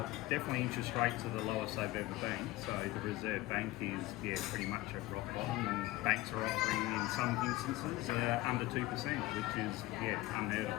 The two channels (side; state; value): right; quieter; 18.3 dB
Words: Definitely interest rates are the lowest they've ever been. So the Reserve Bank is pretty much at rock bottom, and banks are offering in some instances under 2%, which is unheard